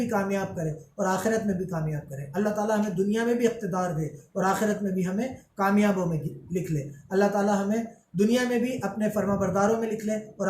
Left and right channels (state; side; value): identical; both; correlation 1.00